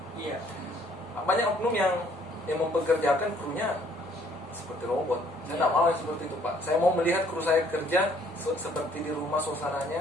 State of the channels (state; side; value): normal; both; correlation 0.62